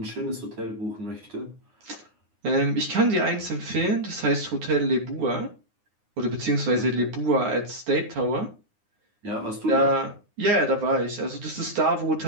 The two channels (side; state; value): left; late; 9.7 ms